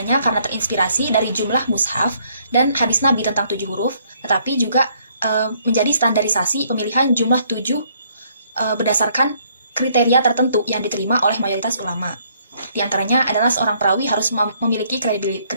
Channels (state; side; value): inverted; both; correlation -0.66